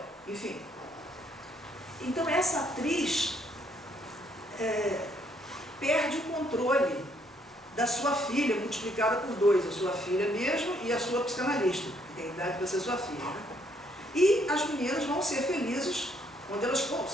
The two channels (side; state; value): both; normal; correlation 0.69